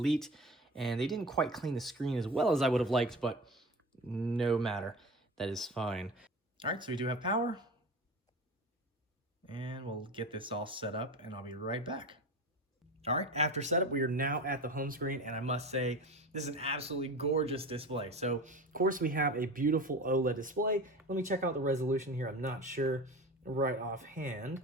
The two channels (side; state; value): both; normal; correlation 0.31